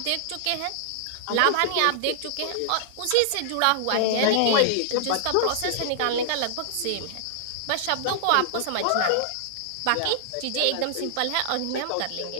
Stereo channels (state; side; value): different; both; correlation -0.01